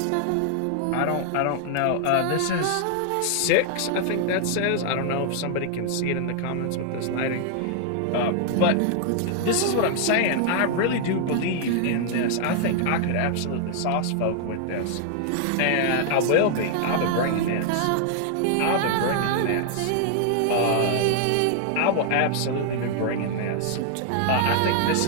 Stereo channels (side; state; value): both; different; correlation 0.00